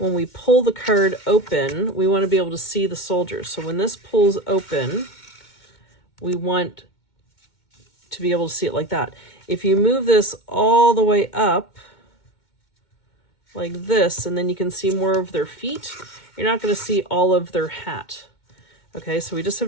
we pull the card open, we want to be able to see the soldiers. So when this pulls open, we want to be able to see it like that. If you move this all the way up like this, and then you can see more of their feet, you're not going to see all of their hat. Okay, so we just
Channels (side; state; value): right; late; 2.2 ms